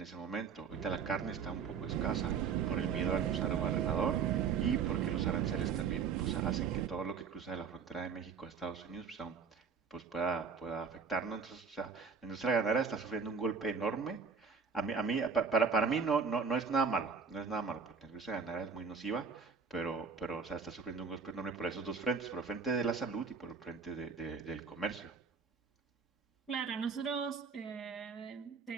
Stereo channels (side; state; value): left; quieter; 5.8 dB